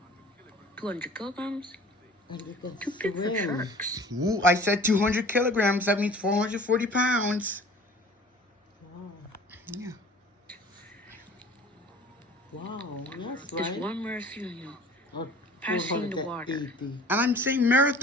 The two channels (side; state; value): both; normal; correlation 0.46